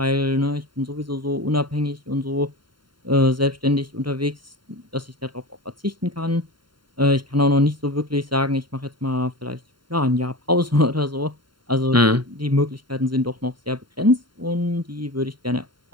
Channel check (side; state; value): left; late; 0.72 ms